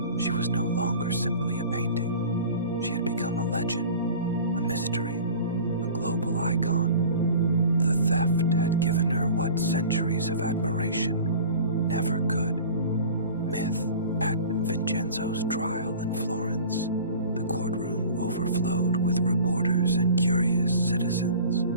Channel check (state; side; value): inverted; both; correlation -0.41